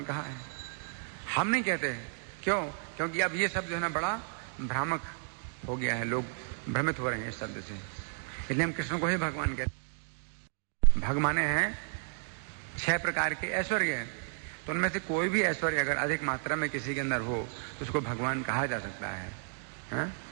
कहा है, हम नहीं कहते हैं। क्यों? क्योंकि अब ये शब्द जो है ना बड़ा भ्रामक हो गया है, लोग भ्रमित हो रहे हैं इस शब्द से, इसलिए हम कृष्ण को ही भगवान कहते हैं। भग माने हैं 6 प्रकार के ऐश्वर्य, तो उनमें से कोई भी ऐश्वर्य अगर अधिक मात्रा में किसी के अंदर हो तो उसको भगवान कहा जा सकता है, हा?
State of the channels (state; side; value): silent; left; digital silence